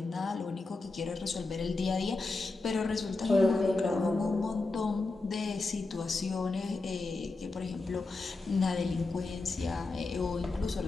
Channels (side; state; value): right; quieter; 3.4 dB